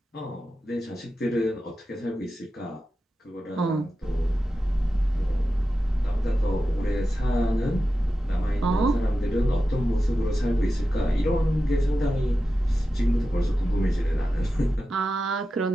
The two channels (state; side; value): normal; both; correlation 0.92